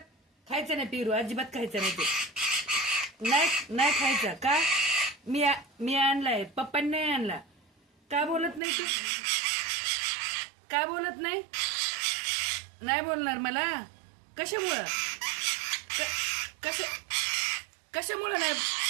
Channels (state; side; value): drops out; left; at 8.6 s